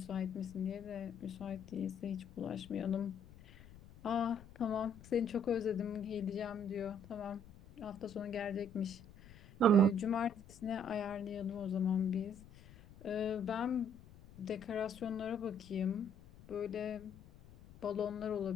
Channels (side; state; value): left; noise; rumble, 20 dB below the sound